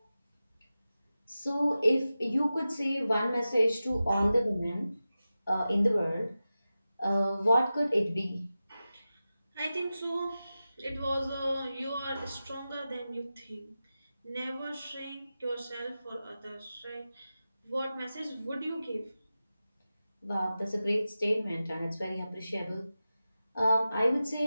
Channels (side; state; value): both; inverted; correlation -0.94